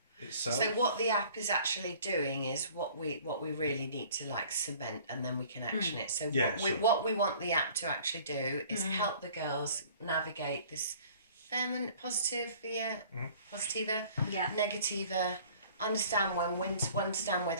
itself. So what the app is actually doing is what we really need to like cement, and then we can action it. So what we want the app to actually do is help the girls navigate this feminine, positive, positiva, negativa, understand understand where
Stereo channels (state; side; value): inverted; both; correlation -0.50